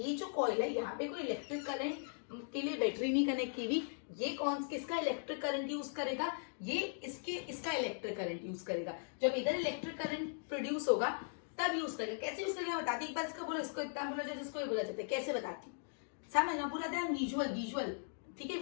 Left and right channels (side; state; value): right; silent; digital silence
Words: जो कॉइल है यहाँ पे कोई इलेक्ट्रिक करंट के लिए बैटरी नहीं कनेक्ट की हुई। ये किसका इलेक्ट्रिक करंट यूज करेगा, ये इसका इलेक्ट्रिक करंट यूज करेगा। जब इधर इलेक्ट्रिक करंट प्रोड्यूस होगा तब यूज करेगा। कैसे यूज करेगा बताती, एक बार इसको बोलो, इसको इतना बोला जाता है, इसको बोला जाता है, कैसे बताती समझना पूरा ध्यान, विजुअल, ठीक है,